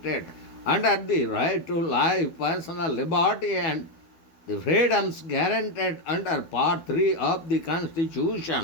under the right to life, personal liberty and the freedoms guaranteed under Part 3 of the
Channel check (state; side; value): late; right; 12 ms